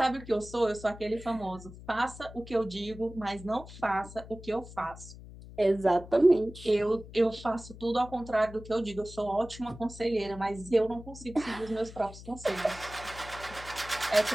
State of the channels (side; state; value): left; noise; hum, 16 dB below the sound